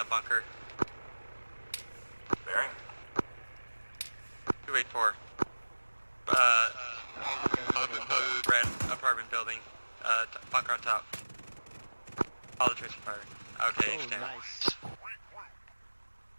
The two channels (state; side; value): inverted; both; correlation -1.00